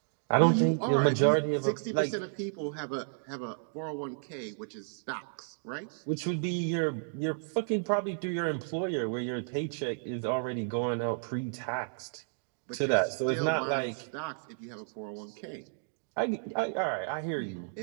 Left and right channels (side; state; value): left; silent; digital silence